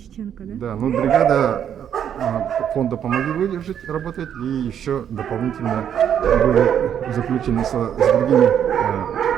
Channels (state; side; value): quieter; left; 9.1 dB